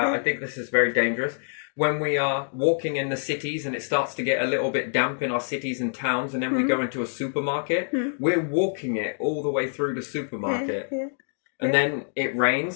I think this is very dangerous. when we are walking in the cities and it starts to get a little bit damp in our cities and towns, and then we go into a supermarket, we're walking it all the way through the supermarket. Yeah. And then it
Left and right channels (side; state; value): right; silent; digital silence